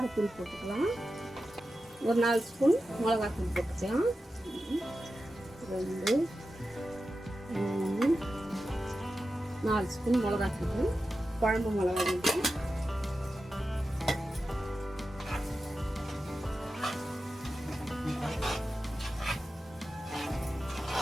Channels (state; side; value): normal; both; correlation 0.92